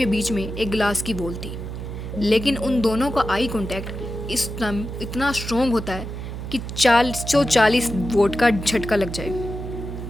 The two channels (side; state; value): right; noise; hum, 7 dB below the sound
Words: बीच में एक ग्लास की वॉल थी, लेकिन उन दोनों का आई कांटेक्ट इतना स्ट्रॉन्ग होता है कि 440 वोट का झटका लग जाए।